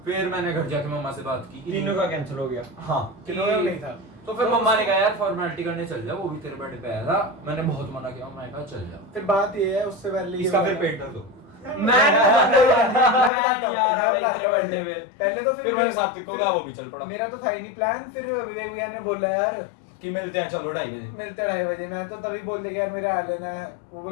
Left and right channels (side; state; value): right; drops out; at 13.3 s